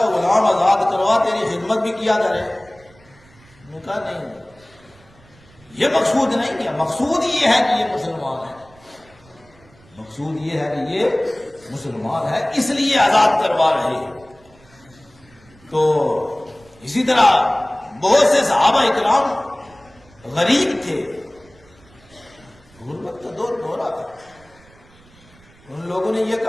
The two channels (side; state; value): right; noise; rumble, 28 dB below the sound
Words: غلام آزاد کروا، تیری خدمت بھی کیا کرے۔ انہوں نے کہا نہیں، یہ مقصود نہیں ہے، مقصود یہ ہے کہ یہ مسلمان ہے، مقصود یہ ہے کہ یہ مسلمان ہے، اس لیے آزاد کروا رہے ہیں۔ تو اسی طرح بہت سے صحابہ اکرام غریب تھے، غربت کا دور آتا۔ ان لوگوں نے یہ